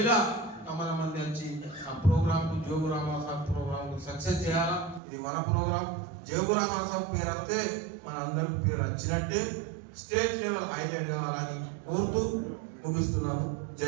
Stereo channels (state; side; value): drops out; left; at 5.0 s